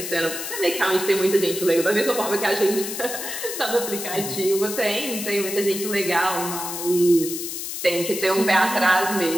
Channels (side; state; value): left; noise; hiss, 6 dB below the sound